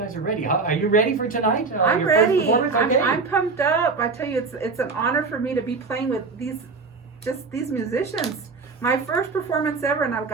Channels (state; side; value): quieter; left; 4.3 dB